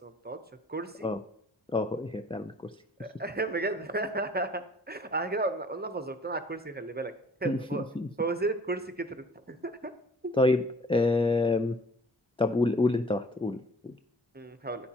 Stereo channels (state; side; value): normal; both; correlation 0.54